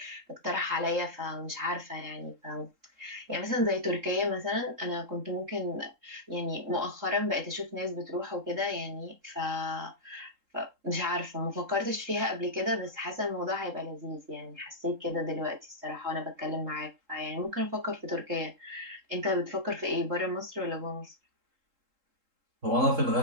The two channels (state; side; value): late; left; 3.7 ms